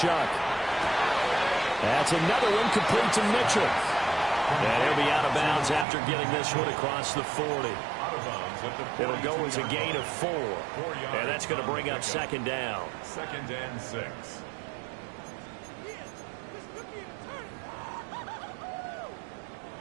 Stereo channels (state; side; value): drops out; left; at 5.9 s